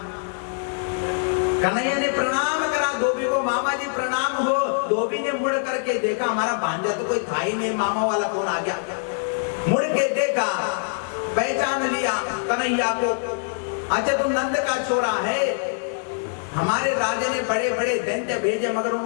कन्हैया ने प्रणाम करा धोबी को, मामा जी प्रणाम हो। धोबी ने मुड़ करके देखा, हमारा भांजा तो कोई था ही नहीं, मामा वाला कौन आ गया। मुड़ के देखा, पहचान लिया कन्हैया को। अच्छा तुम नंद का छोरा है, हमारे राजा ने बड़े बड़े दैत्य भेजे मगर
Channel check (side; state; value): right; silent; digital silence